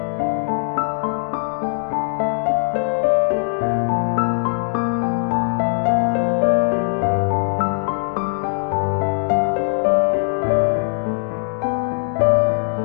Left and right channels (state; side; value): silent; right; digital silence